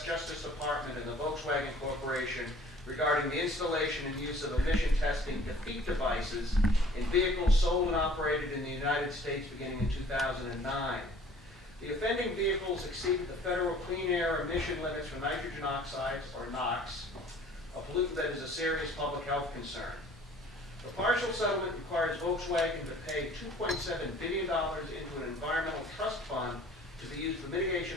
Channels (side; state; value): both; normal; correlation 0.52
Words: Justice Department and the Volkswagen Corporation regarding the installation and use of emission testing defeat devices in vehicles sold and operated in the United States beginning in 2009. The offending vehicles exceeded the federal clean air emission limits for nitrogen oxides, or NOx, a pollutant that is a serious public health concern. The partial settlement requires Volkswagen to pay $2.7 billion into an environmental trust fund to be used for